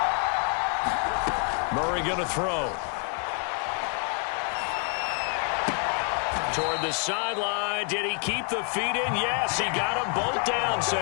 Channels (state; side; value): quieter; right; 39.4 dB